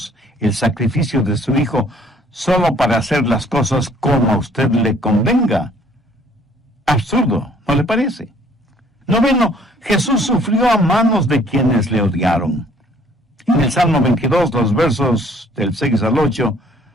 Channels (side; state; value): both; normal; correlation 0.59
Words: el sacrificio de su Hijo solo para hacer las cosas como a usted le convenga? Absurdo, ¿no le parece? Noveno, Jesús sufrió a manos de quienes le odiaron. En el Salmo 22, los versos del 6 al 8,